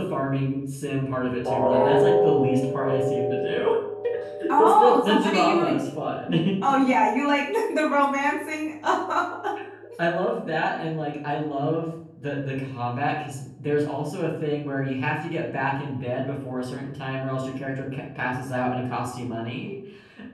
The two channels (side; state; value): both; identical; correlation 1.00